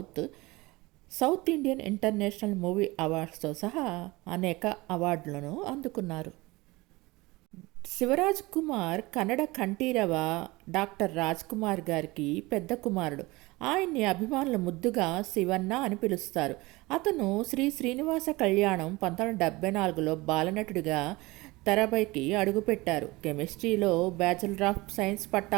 South Indian International Movie అవార్డ్స్తో సహా అనేక అవార్డులను అందుకున్నారు. శివరాజ్ కుమార్ కన్నడ కంఠీరవ డాక్టర్ రాజ్ కుమార్ గారికి పెద్ద కుమారుడు. ఆయన్ని అభిమానులు ముద్దుగా శివన్న అని పిలుస్తారు. అతను శ్రీ శ్రీనివాస కళ్యాణం 1974లో బాలనటుడిగా తెరపైకి అడుగుపెట్టారు. కెమిస్ట్రీలో బ్యాచిలర్ ఆఫ్ సైన్స్ పట్టా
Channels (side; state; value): left; quieter; 21.9 dB